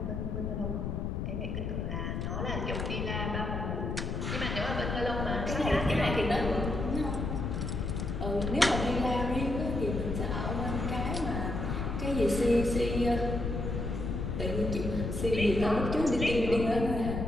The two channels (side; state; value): left; noise; rumble, 2 dB below the sound